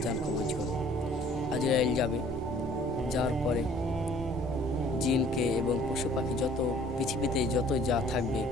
জান কবজ করো। আজরাইল যাবে। যাওয়ার পরে জিনকে এবং পশু পাখি যত পৃথিবীতে যত যা থাকবে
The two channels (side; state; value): both; normal; correlation 0.55